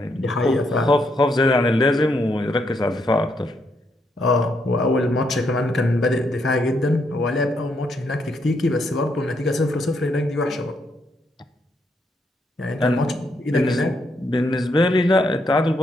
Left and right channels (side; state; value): both; normal; correlation 0.76